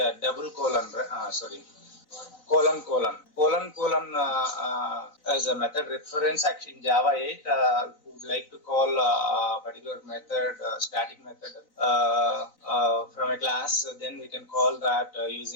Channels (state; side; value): late; right; 4.0 ms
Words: double colon. Colon as a method reference. Actually, in Java 8, we would like to call a particular method, static method from a class. Then we can call that